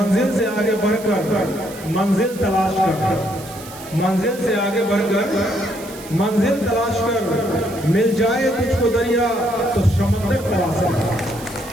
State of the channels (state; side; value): noise; right; hiss, 17 dB below the sound